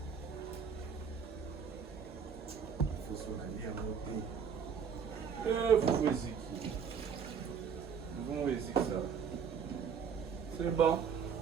Faut se la lire à moto. Faut essayer. Vamos ver se ça. C'est bon.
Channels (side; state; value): left; quieter; 6.9 dB